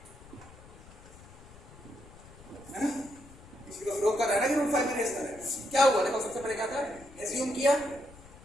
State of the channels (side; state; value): left; noise; rumble, 20 dB below the sound